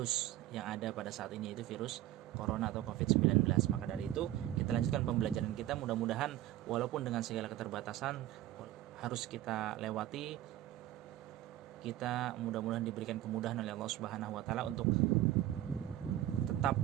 yang ada pada saat ini, yaitu virus corona atau COVID-19. Maka dari itu kita lanjutkan pembelajaran kita, mudah-mudahan walaupun dengan segala keterbatasan harus kita lewati, kita mudah-mudahan diberikan kemudahan oleh Allah Subhanahu wa taala untuk tetap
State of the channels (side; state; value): left; quieter; 13.8 dB